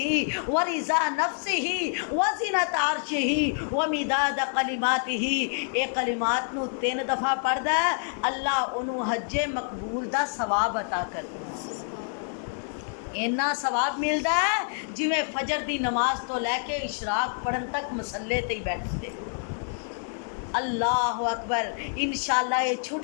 व रिज़ा नफ्सिही व ज़ीनत अर्शिही व मिदाद कलिमातिही, ये कलिमात नू 3 दफ़ा पढ़दा है, अल्लाह उन्होंने हज्जे मकबूल दा सवाब अता कर इन्ना सवाब मिलता है जिमें फजर दी नमाज तो लैके इशराक पढ़न तक मसले ते ही बैठे। अल्लाह अकबर। इंशाल्लाह ये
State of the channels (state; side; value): silent; right; 60 dB below the other